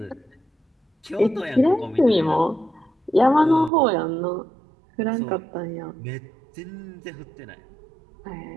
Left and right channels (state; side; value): drops out; left; at 3.7 s